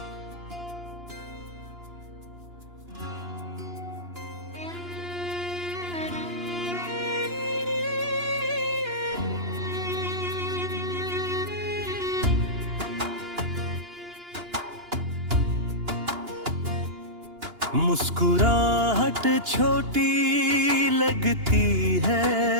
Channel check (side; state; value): left; late; 2.9 ms